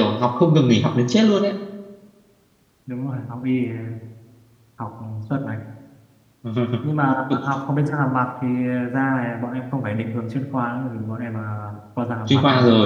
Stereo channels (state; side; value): identical; both; correlation 1.00